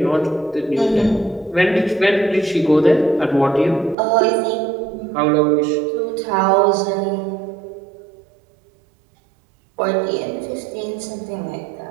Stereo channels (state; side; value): drops out; left; at 4.0 s